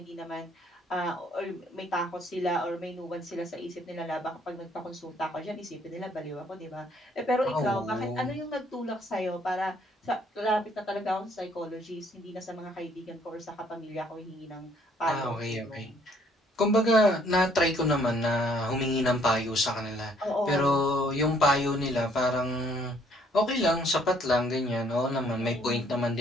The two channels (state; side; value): normal; both; correlation 0.64